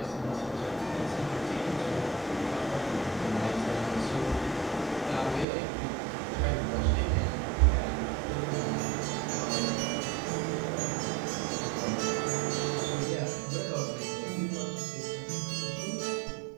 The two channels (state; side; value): drops out; left; at 5.5 s